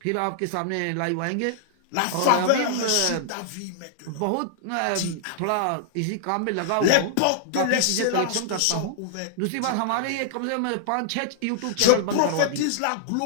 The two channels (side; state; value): both; different; correlation -0.01